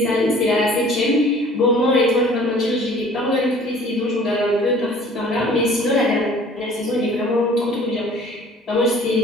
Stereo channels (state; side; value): normal; both; correlation 0.50